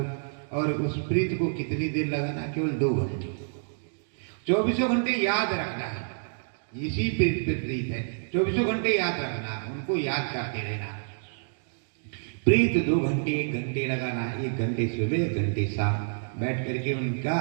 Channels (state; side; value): silent; left; digital silence